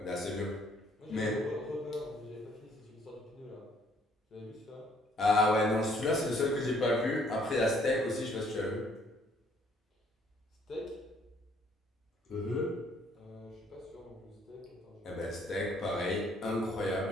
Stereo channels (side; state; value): both; normal; correlation 0.64